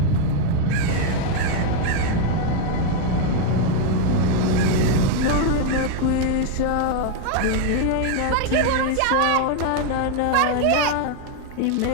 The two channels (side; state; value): both; different; correlation 0.01